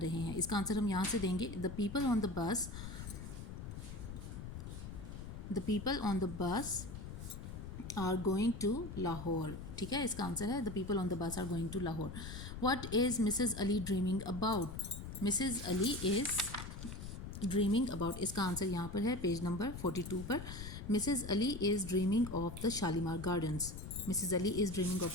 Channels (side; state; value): left; noise; rumble, 9 dB below the sound